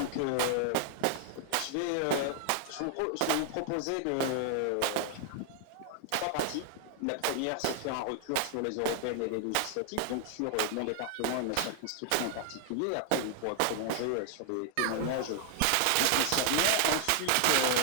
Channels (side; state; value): both; different; correlation 0.00